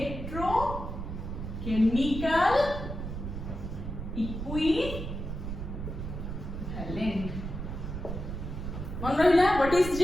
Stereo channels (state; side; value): noise; right; rumble, 6 dB below the sound